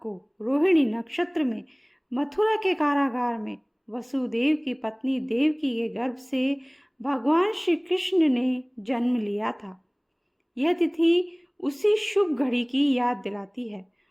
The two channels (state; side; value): identical; both; correlation 1.00